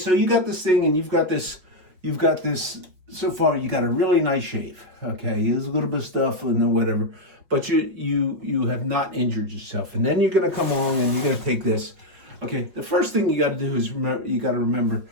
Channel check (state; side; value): late; left; 5.6 ms